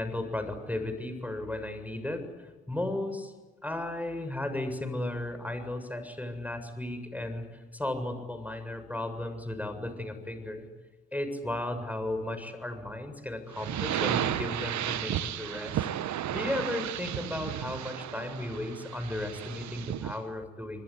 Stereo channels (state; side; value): normal; both; correlation 0.59